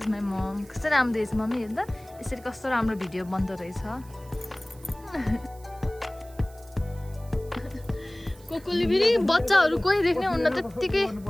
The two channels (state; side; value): noise; right; hiss, 25 dB below the sound